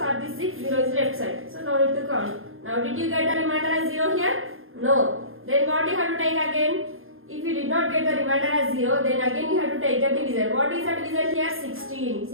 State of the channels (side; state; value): left; late; 0.60 ms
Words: this 6, 0 is left side. So no need to count. Now did you get the remainder as 0 here? No. Then what you have to take again? If you did not get the remainder as 0, then again you have to take the divisor. What is the divisor here? 16.